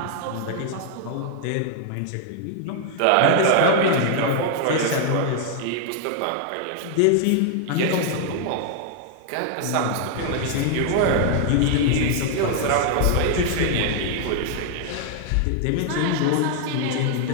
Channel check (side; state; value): both; different; correlation 0.00